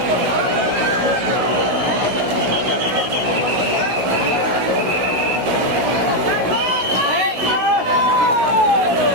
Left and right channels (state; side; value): late; left; 16 ms